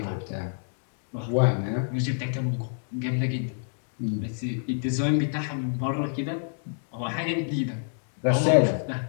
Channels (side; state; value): right; silent; digital silence